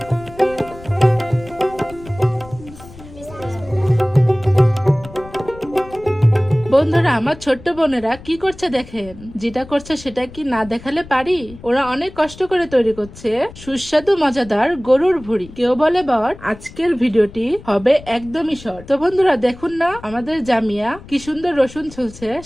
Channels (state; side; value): noise; left; rumble, 18 dB below the sound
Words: বন্ধুরা, আমার ছোট্ট বোনেরা কি করছে দেখেন। যেটা করছে সেটা কি না দেখালে পারি? ওরা অনেক কষ্ট করে তৈরি করছে সুস্বাদু মজাদার গরুর ভুড়ি। কেউ বলে বর, আজকের ভিডিওটি হবে একদমই শর্ট। তো বন্ধুরা দেখুন না, আমাদের জামিয়া কি সুন্দর রসুন ছুলছে,